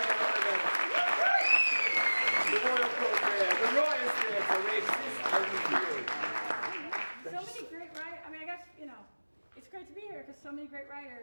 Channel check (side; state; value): both; inverted; correlation -1.00